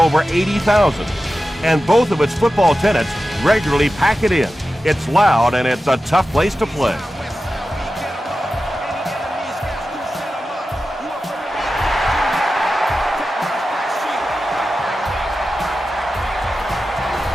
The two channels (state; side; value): normal; both; correlation 0.93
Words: 80,000, and both of its football tenants regularly pack it in. It's loud and it's a tough place to play.